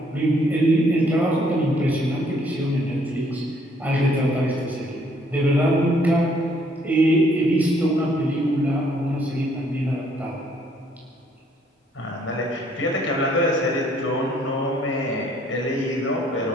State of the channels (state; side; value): normal; both; correlation 0.65